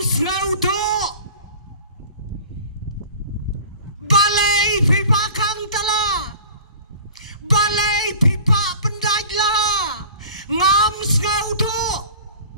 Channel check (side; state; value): both; inverted; correlation -0.43